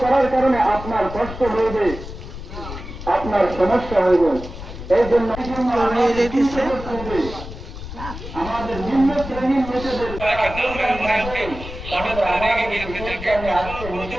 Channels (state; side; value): noise; left; rumble, 10 dB below the sound